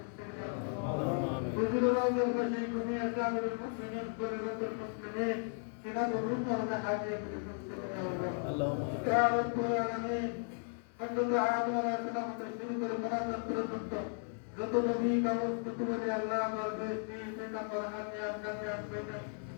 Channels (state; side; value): silent; right; 54 dB below the other